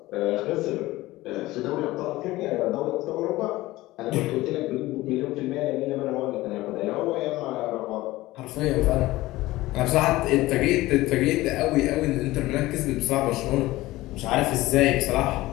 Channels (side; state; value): right; quieter; 18.1 dB